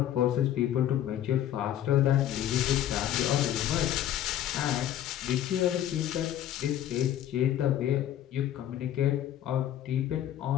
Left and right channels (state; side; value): quieter; right; 11.5 dB